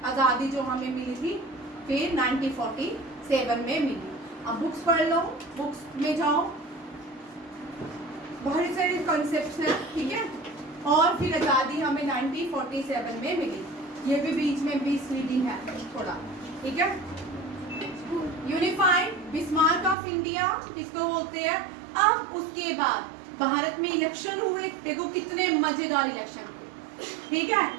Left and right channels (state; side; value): drops out; left; at 20.0 s